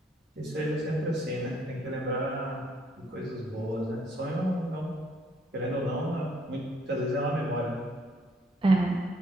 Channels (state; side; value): normal; both; correlation 0.67